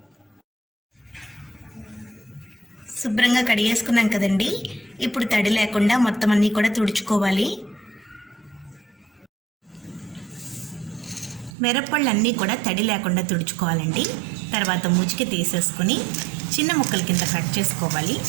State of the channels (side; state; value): left; drops out; at 11.5 s